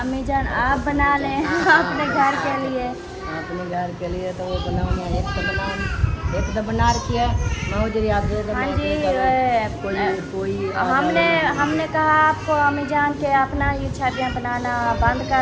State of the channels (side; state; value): both; identical; correlation 1.00